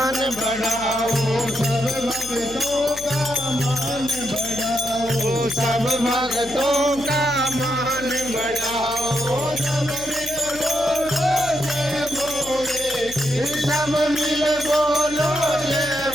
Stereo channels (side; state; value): left; noise; hum, 17 dB below the sound